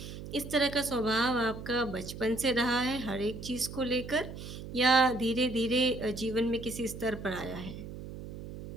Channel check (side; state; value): right; noise; hum, 11 dB below the sound